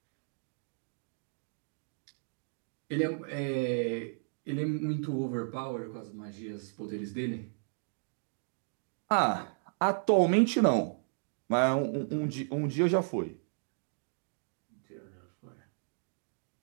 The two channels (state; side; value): silent; left; digital silence